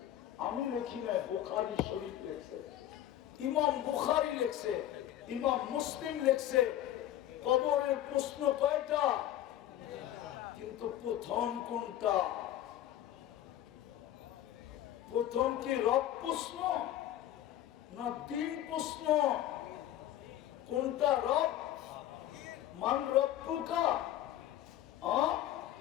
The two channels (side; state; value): right; quieter; 12.5 dB